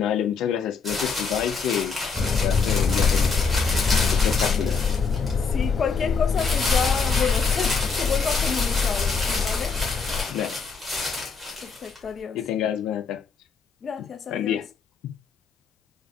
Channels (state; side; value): quieter; right; 5.2 dB